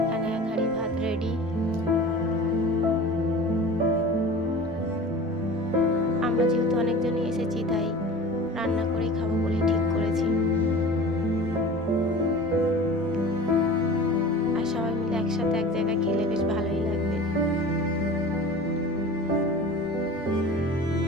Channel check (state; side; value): normal; both; correlation 0.37